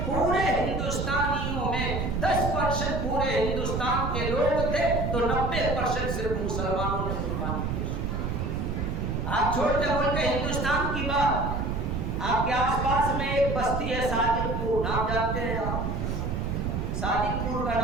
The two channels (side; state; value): right; noise; rumble, 1 dB below the sound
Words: پورے ہندوستانیوں میں 10% پورے ہندوستان کے لوگ تھے تو 90% صرف مسلمانوں نے قربانی پیش کی۔ آپ چھوٹے ملک ہندوستان کی بات، آپ کے آس پاس میں ایک بستی ہے صادق پور، نام جانتے ہیں آپ؟ صادق پور کا